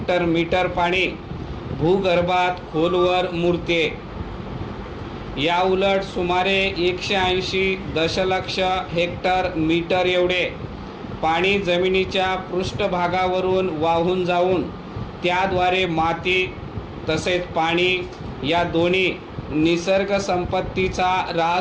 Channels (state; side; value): identical; both; correlation 1.00